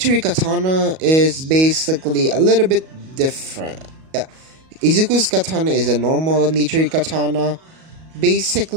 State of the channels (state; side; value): late; left; 37 ms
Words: Katana is basically a little bit different. Yeah. Izuku's Katana is a normal Nichiri Katana,